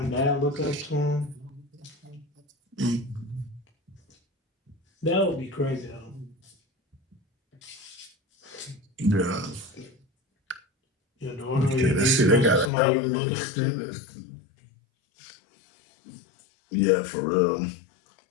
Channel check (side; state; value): right; drops out; at 12.7 s